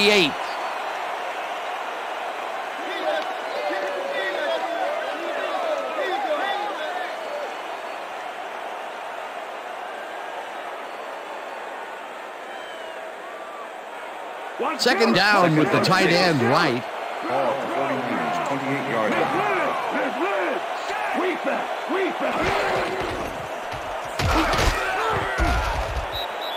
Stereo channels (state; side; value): identical; both; correlation 1.00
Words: Second down with the tight end right. Ball at the 49ers, 28-yard line.